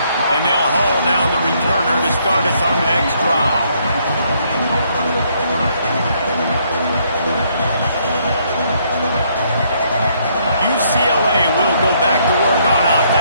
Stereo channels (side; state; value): both; inverted; correlation -0.70